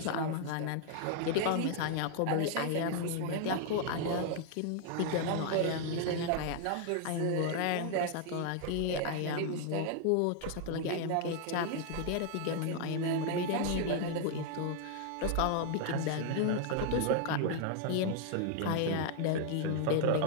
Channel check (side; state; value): both; different; correlation 0.00